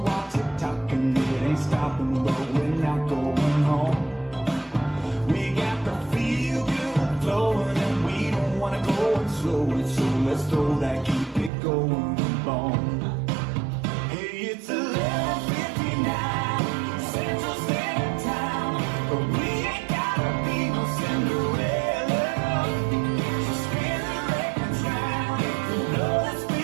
tick-tocking. It ain't stopping, but we're not going home. We got the feel good flowing and we don't wanna go and slow it, so let's throw that keep it going bone. Hey, it's 11:59 Central Standard Time, but we ain't gotta be no Cinderella. So spin the records round, if you blow the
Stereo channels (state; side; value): drops out; left; at 11.5 s